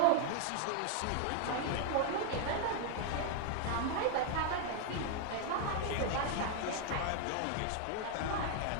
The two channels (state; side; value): different; both; correlation 0.00